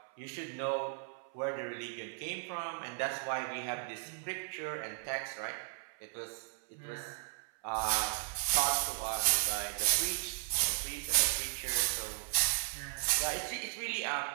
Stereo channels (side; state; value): left; silent; 54 dB below the other